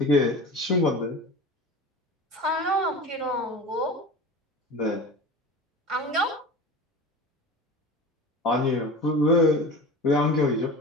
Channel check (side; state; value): both; normal; correlation 0.33